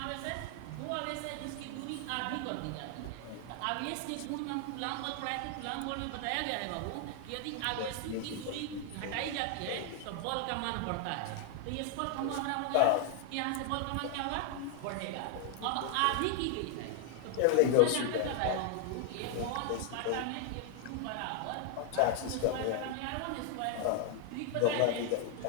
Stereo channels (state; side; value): different; both; correlation 0.00